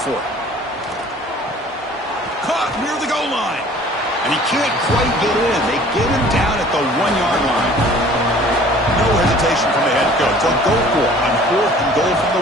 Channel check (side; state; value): both; normal; correlation 0.50